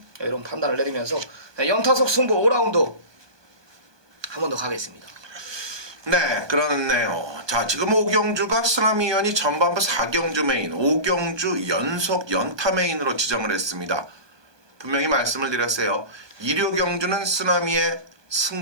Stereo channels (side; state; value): left; late; 1.2 ms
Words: 이런 판단을 내리면서 연타석 승부 5라운드 한 번 더 가겠습니다. 네, 그렇네요. 자, 지금 5경주가 쓰나미연이 전반부 4경주 메인, 5경주 연속 연타 메인으로 지정을 했습니다. 분명히 말씀을 드렸어요. 1호경주는 쓰나미의